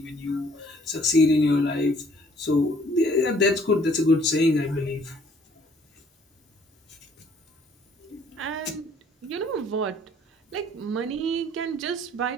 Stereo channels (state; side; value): normal; both; correlation 0.60